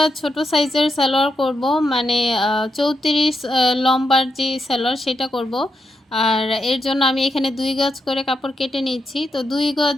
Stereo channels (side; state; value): both; normal; correlation 0.83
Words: ছোট সাইজের সালোয়ার করব, মানে ৩৪ লম্বার যে সালোয়ার সেটা করব। আর এর জন্য আমি এখানে ২ গজ করে কাপড় কেটে নিচ্ছি। তো ২